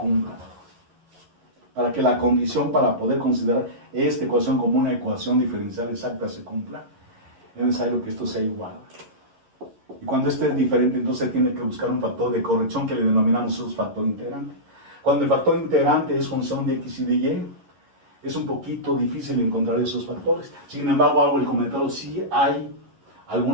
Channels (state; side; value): late; left; 11 ms